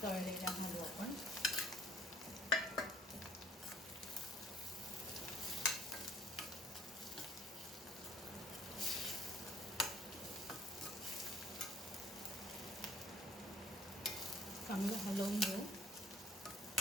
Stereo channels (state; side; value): normal; both; correlation 0.58